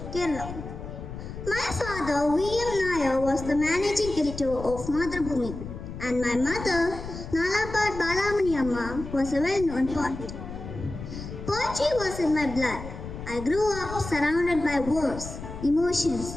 Kerala. My father, V.M. Nair, was the managing editor of Madhrubhumi, and my mother, Nalapad Balamani Amma, was a well-known poet. Poetry was in my blood. I grew up surrounded by words, emotions,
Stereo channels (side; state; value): left; noise; rumble, 10 dB below the sound